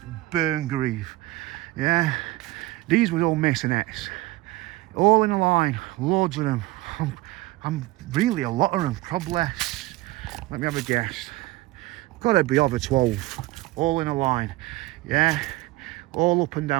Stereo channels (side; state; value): left; quieter; 18.9 dB